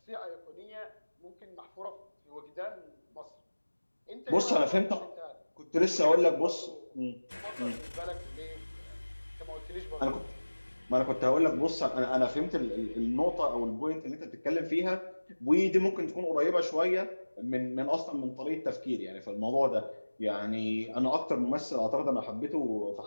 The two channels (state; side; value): inverted; both; correlation -1.00